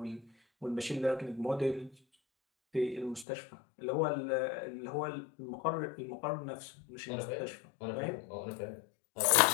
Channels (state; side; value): drops out; right; at 3.2 s